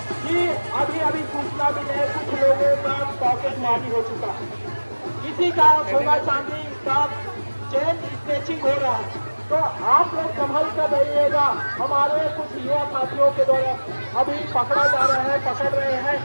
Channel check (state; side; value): inverted; both; correlation -1.00